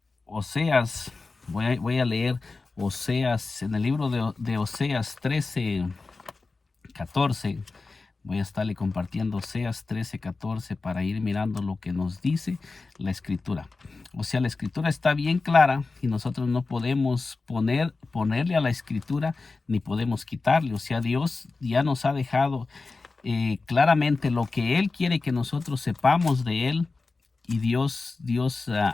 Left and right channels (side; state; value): right; quieter; 3.8 dB